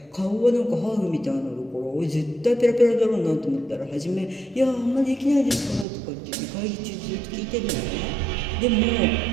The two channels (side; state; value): left; drops out; at 5.9 s